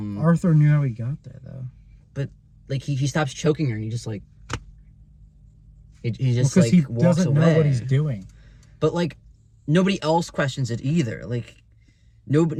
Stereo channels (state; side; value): identical; both; correlation 1.00